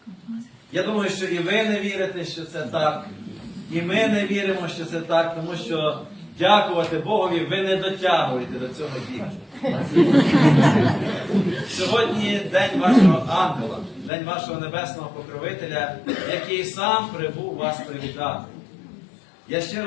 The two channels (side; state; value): right; drops out; at 14.1 s